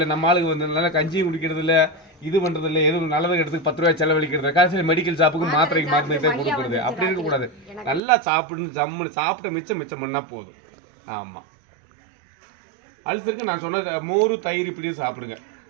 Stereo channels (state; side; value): drops out; left; at 8.0 s